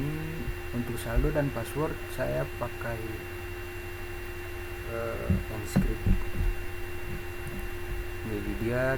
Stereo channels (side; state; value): both; identical; correlation 1.00